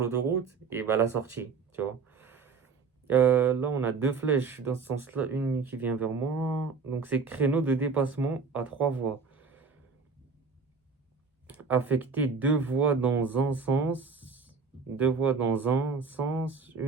et bah la sortie, tu vois. Là, on a deux flèches dans ce sens-là, une qui vient vers moi. Donc, c'est créneau de dépassement à trois voies. Affecter deux voies dans un sens, deux voies dans un sens,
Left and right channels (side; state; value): left; quieter; 5.0 dB